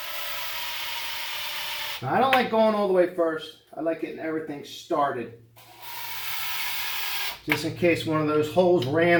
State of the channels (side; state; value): both; identical; correlation 1.00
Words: Now, I don't like going all the way first. I like getting everything started. Just in case one of those holes